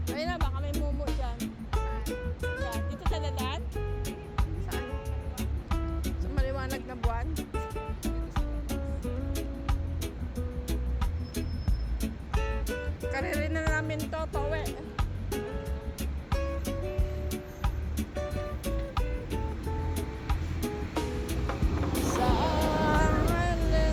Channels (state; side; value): identical; both; correlation 1.00